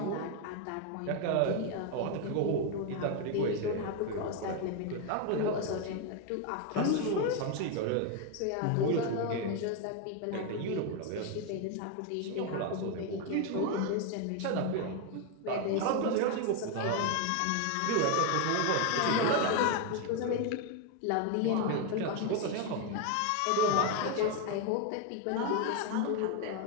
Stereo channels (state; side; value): different; both; correlation 0.01